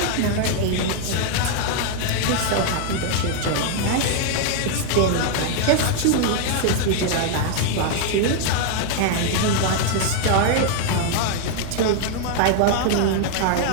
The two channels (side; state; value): both; different; correlation 0.00